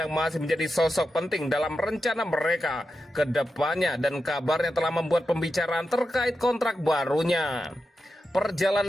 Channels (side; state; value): both; normal; correlation 0.89